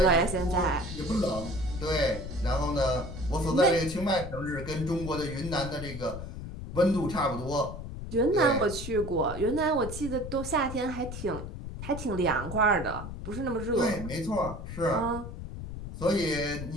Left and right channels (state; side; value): noise; left; rumble, 9 dB below the sound